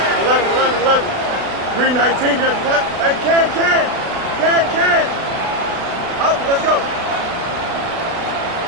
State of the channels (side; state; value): left; late; 36 ms